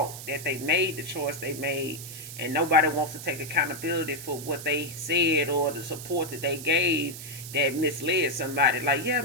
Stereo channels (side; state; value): right; noise; hiss, 11 dB below the sound